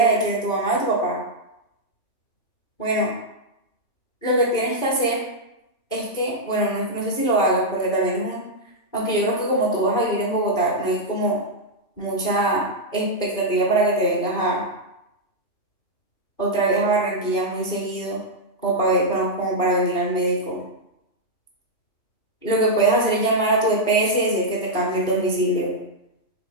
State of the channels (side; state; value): right; late; 2.5 ms